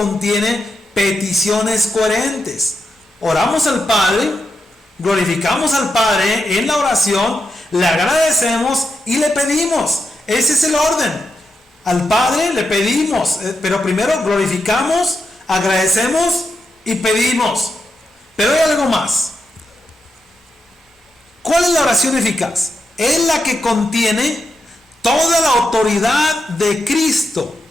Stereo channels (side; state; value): both; normal; correlation 0.85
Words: peticiones coherentes. Oramos al Padre, glorificamos al Padre en la oración, le agradecemos y le pedimos. Ese es el orden. Al Padre le pedimos, pero primero glorificamos, agradecemos y pedimos. Pero hay algo más. ¿Cuál es la oración eficaz? Es la que contiene toda la autoridad de Cristo.